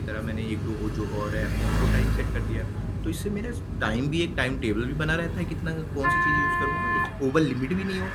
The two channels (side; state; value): both; identical; correlation 1.00